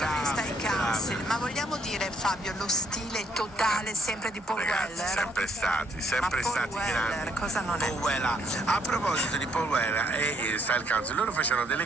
ai Council, ma vogliamo dire, Fabio, lo stile totale sempre di Paul Ragazzi, Weller? sempre Paul stati Weller, grandi. cosa non è? Paul Weller. A proposito di Paul Weller e Style Council, loro facevano delle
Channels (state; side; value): normal; both; correlation 0.69